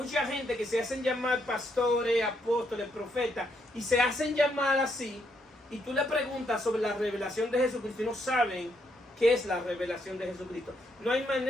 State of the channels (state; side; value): normal; both; correlation 0.75